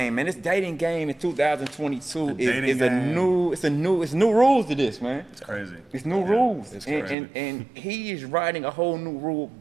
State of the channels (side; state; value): left; drops out; at 7.2 s